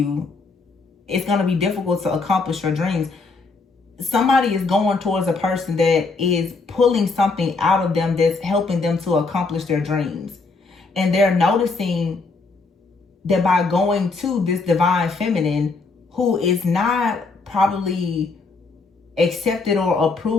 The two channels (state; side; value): quieter; right; 4.0 dB